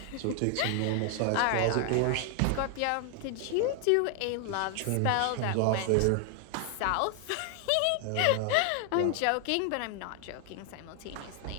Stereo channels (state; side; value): different; both; correlation 0.00